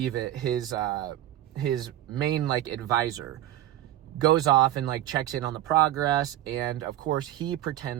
it, his main like advisor goes off and like checks in on the progress. And of course he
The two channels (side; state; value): left; quieter; 13.1 dB